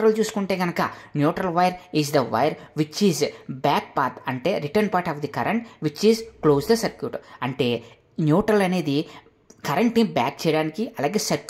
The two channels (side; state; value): both; identical; correlation 1.00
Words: చూసుకుంటే కనుక neutral wire is the wire which is back path, అంటే return part of the current which is close the circuit. అంటే న్యూట్రల్ అనేది కరెంట్ని బ్యాక్ చేయడానికి, అలాగే